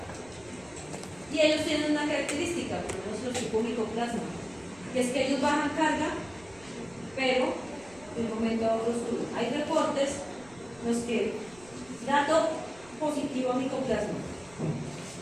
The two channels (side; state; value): right; noise; rumble, 24 dB below the sound